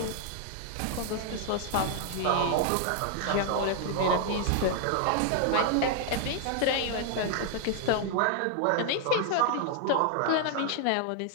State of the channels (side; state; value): both; different; correlation 0.00